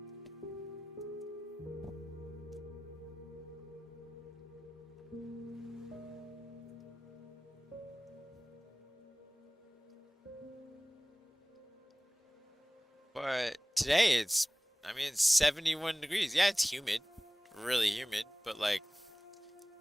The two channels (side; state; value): both; normal; correlation 0.98